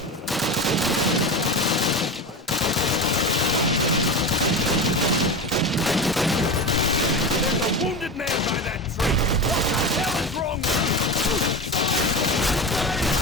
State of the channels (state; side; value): normal; both; correlation 0.24